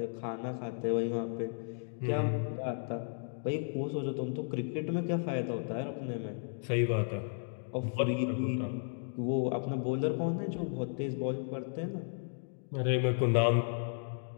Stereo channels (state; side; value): silent; right; digital silence